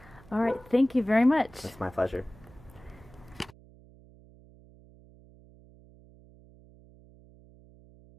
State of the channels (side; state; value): right; noise; hum, 24 dB below the sound